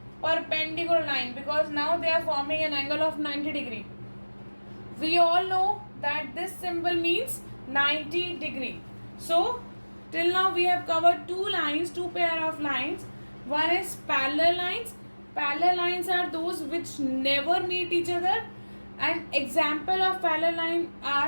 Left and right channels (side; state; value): both; inverted; correlation -1.00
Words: perpendicular line because now they are forming an angle of 90 degree. We all know that this symbol means 90 degree. So till now we have covered two lines, two pair of lines. One is parallel lines. Parallel lines are those which never meet each other. An example of parallel line